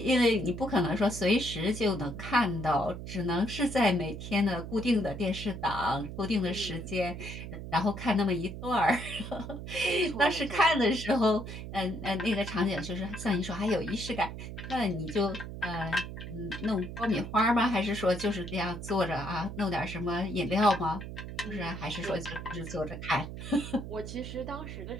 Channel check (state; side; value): noise; right; hum, 9 dB below the sound